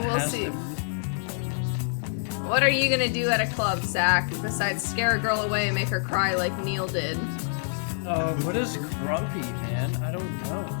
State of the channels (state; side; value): silent; right; digital silence